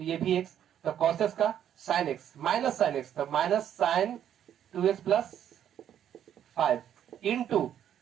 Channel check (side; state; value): left; quieter; 10.0 dB